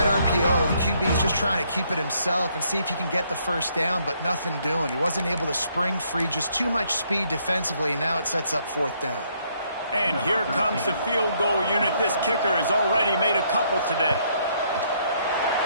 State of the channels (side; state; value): both; inverted; correlation -0.70